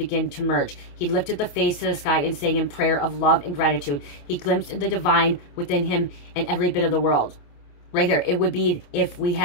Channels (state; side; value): late; right; 28 ms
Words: to merge. He lifted the face to the sky and sang in prayer of love and gratitude. He glimpsed the divine within him and every bit of the world. Right here, it would be if we